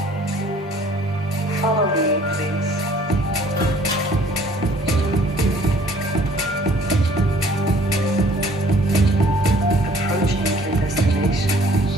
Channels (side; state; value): both; normal; correlation 0.56